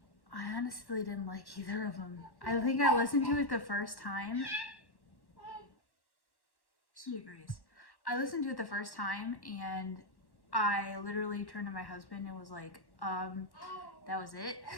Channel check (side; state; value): right; late; 1.1 ms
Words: honestly didn't like either of them. I think I listened to it the first time. She agrees. I listened to it the first time, and I literally turned to my husband and was like, that was it.